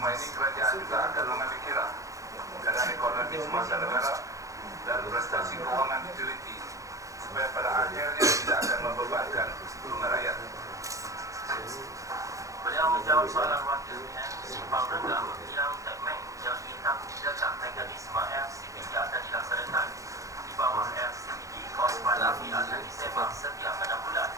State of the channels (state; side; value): late; left; 0.16 ms